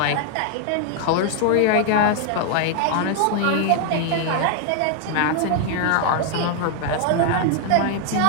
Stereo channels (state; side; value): different; both; correlation 0.00